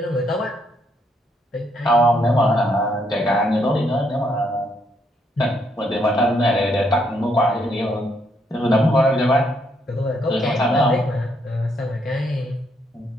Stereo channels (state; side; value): normal; both; correlation 0.74